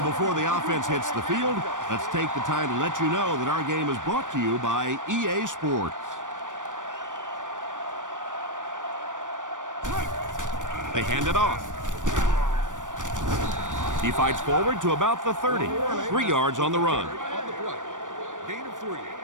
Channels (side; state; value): left; late; 0.87 ms